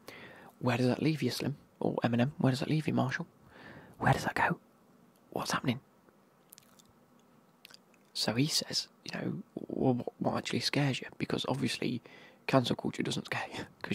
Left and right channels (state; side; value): identical; both; correlation 1.00